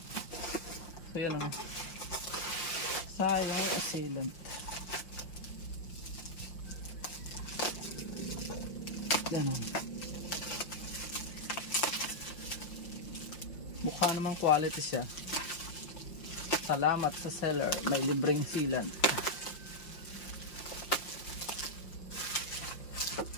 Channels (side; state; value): right; late; 5.7 ms